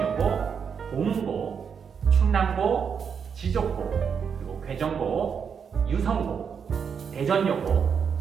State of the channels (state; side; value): quieter; left; 6.8 dB